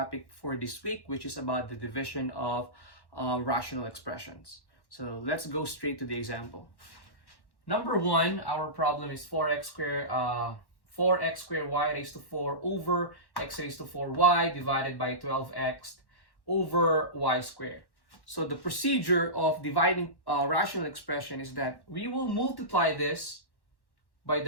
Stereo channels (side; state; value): right; late; 1.1 ms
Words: for this week, which is about the division of rational expressions. So let's go straight to the example. Number one, our problem is 4x squared y raised to 4 over x raised to 4y divided by 12x over y squared. So the procedure of dividing a rational expression is that we will multiply this by